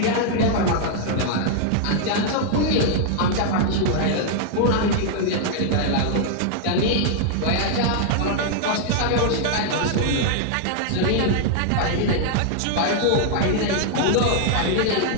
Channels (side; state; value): both; different; correlation 0.00